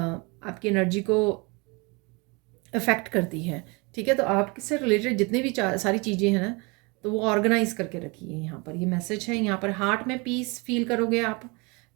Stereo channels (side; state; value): left; quieter; 28.3 dB